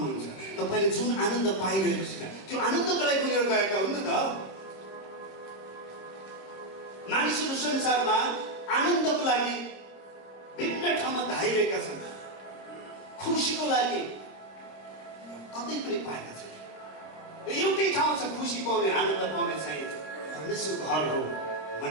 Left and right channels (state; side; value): late; right; 26 ms